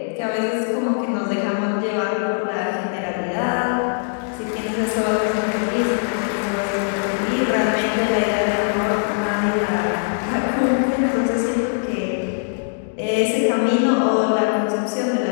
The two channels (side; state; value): right; silent; digital silence